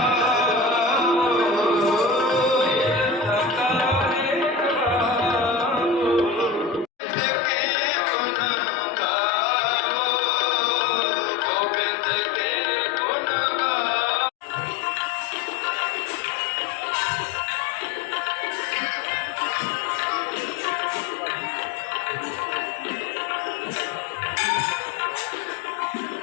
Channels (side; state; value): right; drops out; at 6.9 s